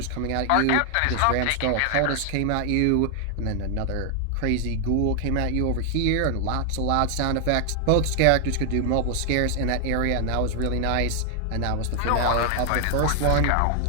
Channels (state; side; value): different; both; correlation 0.00